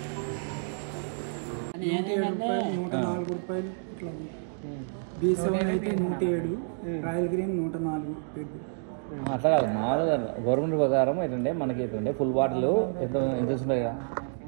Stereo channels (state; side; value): silent; left; digital silence